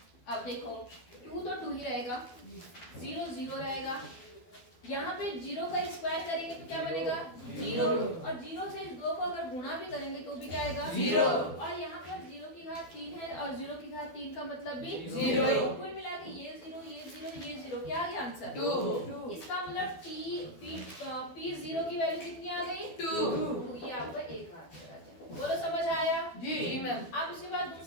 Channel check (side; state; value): right; late; 12 ms